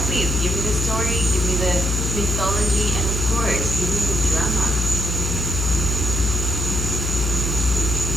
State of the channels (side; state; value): left; noise; hum, 1 dB below the sound